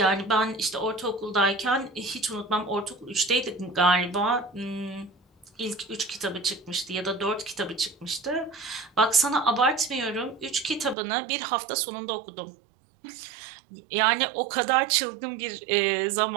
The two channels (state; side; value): drops out; left; at 11.0 s